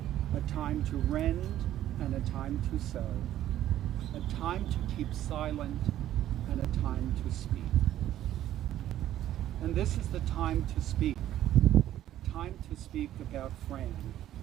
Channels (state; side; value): quieter; left; 12.6 dB